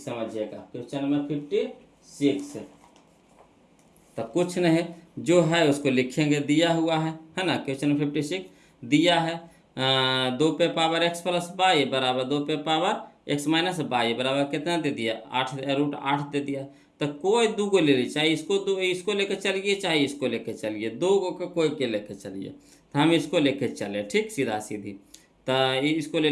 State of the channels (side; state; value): both; identical; correlation 1.00